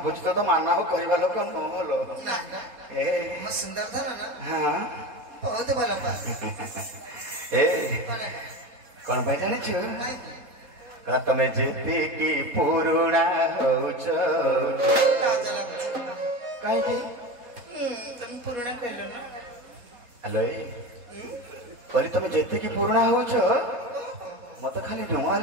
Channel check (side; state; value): left; late; 3.7 ms